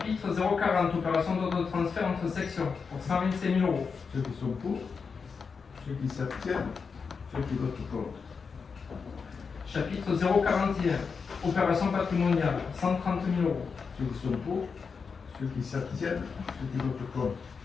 040, opération d'ordre de transfert entre sections pour 125 000 euros. Ceux qui sont pour, ceux qui s'abstiennent, ceux qui votent contre. Chapitre 041, opération patrimoniale, 130 000 euros. Ceux qui sont pour, ceux qui s'abstiennent, ceux qui votent contre.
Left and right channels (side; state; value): right; quieter; 5.4 dB